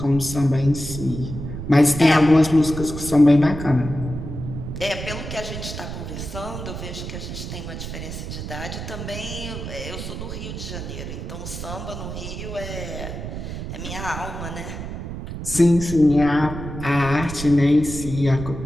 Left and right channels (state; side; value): noise; right; rumble, 7 dB below the sound